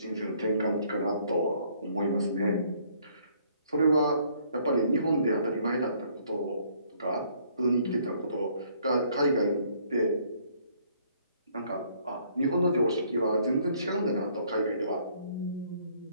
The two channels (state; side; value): inverted; both; correlation -0.64